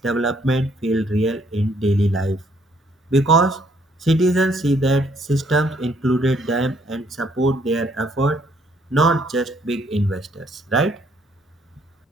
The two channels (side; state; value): both; normal; correlation 0.67